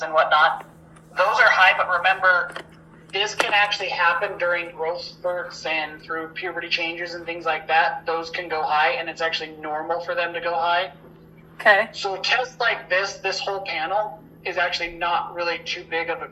and whatnot, those are high, but remember, this can actually happen during growth spurts and through puberty changes and things like that. Those can go high, and it's actually normal for them to go high. Okay. So tests like this whole panel is actually not really too big of a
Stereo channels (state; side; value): identical; both; correlation 1.00